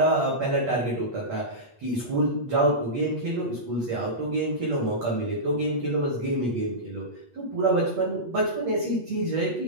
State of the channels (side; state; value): left; late; 8.3 ms